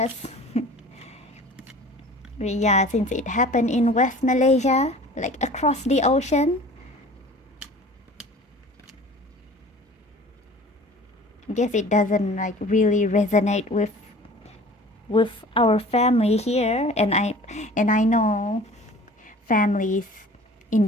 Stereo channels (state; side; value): normal; both; correlation 0.45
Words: But yeah, since it happened in West Malaysia, like across the ocean, I guess it doesn't like really resonate with our family here, and I know families in